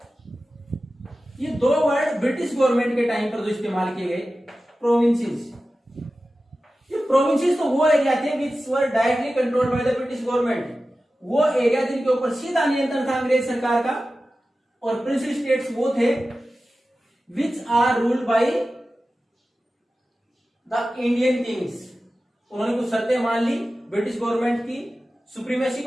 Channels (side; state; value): both; normal; correlation 0.94